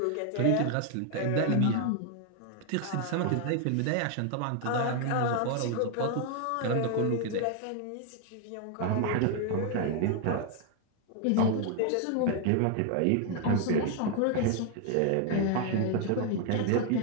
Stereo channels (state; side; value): different; both; correlation 0.00